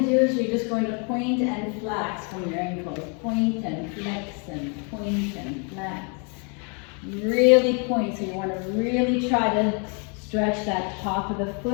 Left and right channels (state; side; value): quieter; right; 37.1 dB